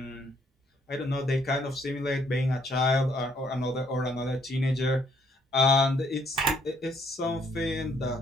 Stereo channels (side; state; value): both; normal; correlation 0.67